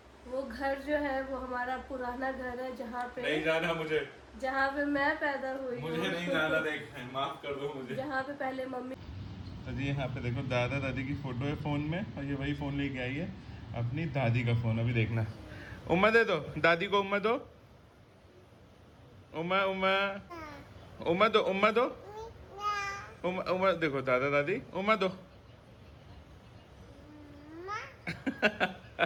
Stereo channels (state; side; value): identical; both; correlation 1.00